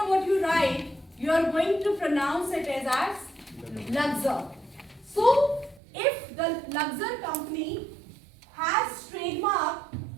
what you write, you are going to pronounce it as Luxor. So, if the Luxor company has trademark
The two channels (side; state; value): left; drops out; at 5.8 s